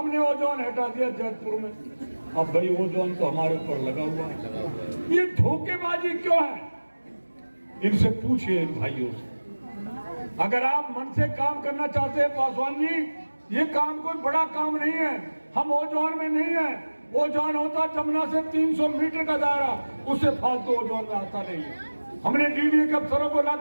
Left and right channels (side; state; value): both; inverted; correlation -1.00